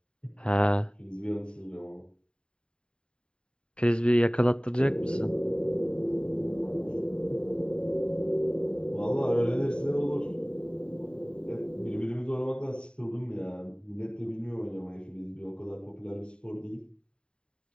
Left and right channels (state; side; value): late; right; 0.051 ms